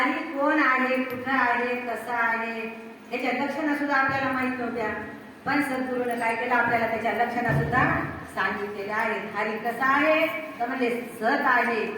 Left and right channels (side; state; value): both; identical; correlation 1.00